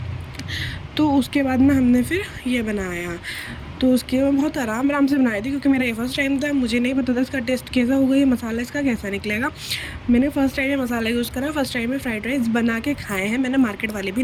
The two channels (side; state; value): both; identical; correlation 1.00